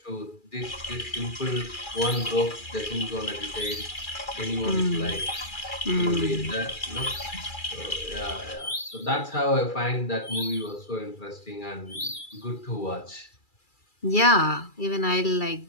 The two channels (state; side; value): late; right; 2.3 ms